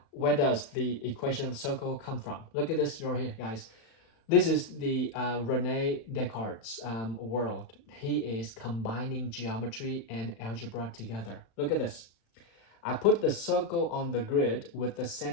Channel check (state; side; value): late; right; 35 ms